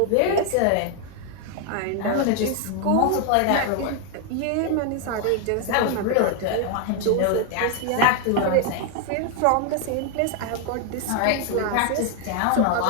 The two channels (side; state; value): both; different; correlation 0.01